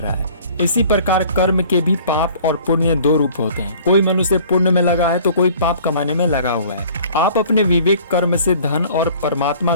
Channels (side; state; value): both; inverted; correlation -0.50